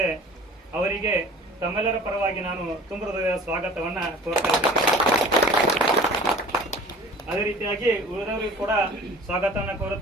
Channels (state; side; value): normal; both; correlation 0.44